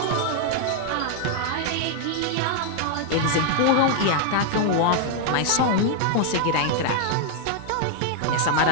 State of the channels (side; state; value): both; different; correlation 0.00